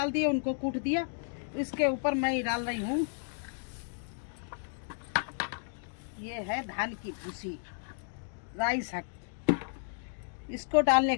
दिए, उनको कूट दिया। इसके ऊपर मैं डाल रही हूँ, ये है धान की भूसी, राई साग। इसको डालने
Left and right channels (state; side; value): silent; right; digital silence